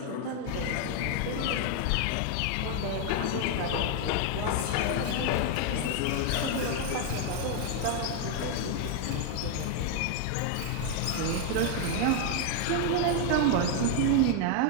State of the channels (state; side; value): different; both; correlation 0.01